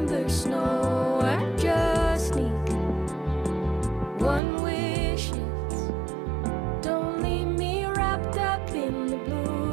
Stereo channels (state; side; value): drops out; left; at 4.4 s